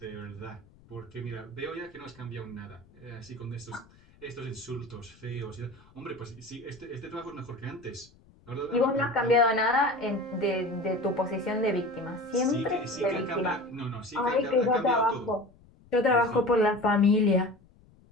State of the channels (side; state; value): left; noise; rumble, 27 dB below the sound